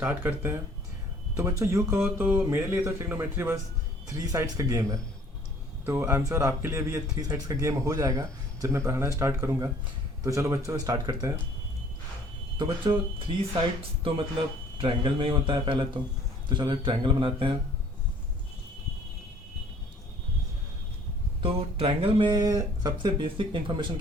करते हैं। तो बच्चों यूँ कहो तो मेरे लिए तो ट्रिग्नोमेट्री बस 3 साइड्स का गेम है। तो आई एम श्योर आपके लिए भी ये 3 साइड्स का गेम हो जाएगा जब मैं पढ़ाना स्टार्ट करूँगा। तो चलो बच्चों स्टार्ट करते हैं। तो बच्चों 3 साइड्स तो मतलब ट्रायंगल में ही होता है पहले तो चलो एक ट्रायंगल बनाते हैं। तो ट्रायंगल में सबसे बेसिक इन्फॉर्मेशन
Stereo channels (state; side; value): normal; both; correlation 0.55